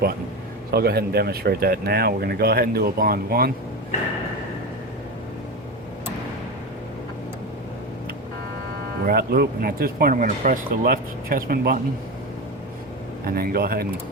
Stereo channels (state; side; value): normal; both; correlation 0.21